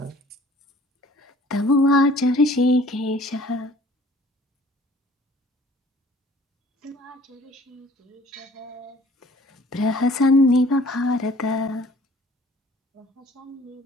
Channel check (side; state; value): both; normal; correlation 0.53